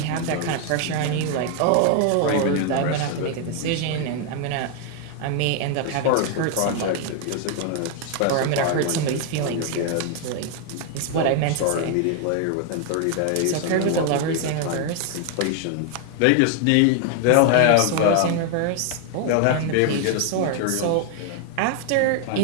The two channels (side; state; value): both; different; correlation 0.00